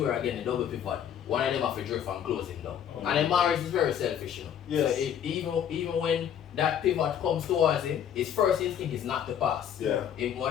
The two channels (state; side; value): quieter; right; 9.2 dB